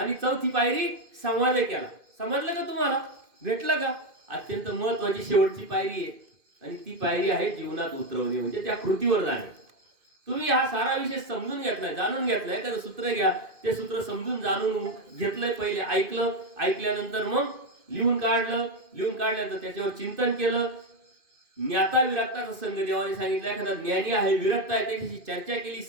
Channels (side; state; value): left; late; 2.5 ms